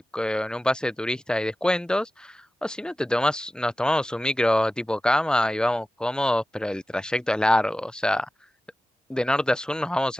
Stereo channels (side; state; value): both; normal; correlation 0.95